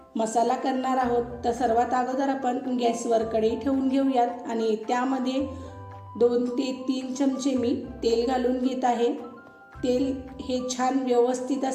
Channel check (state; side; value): identical; both; correlation 1.00